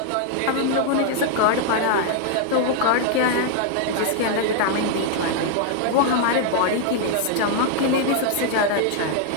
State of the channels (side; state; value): both; different; correlation 0.00